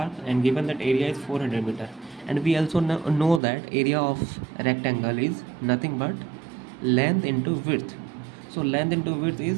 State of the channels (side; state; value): left; drops out; at 3.4 s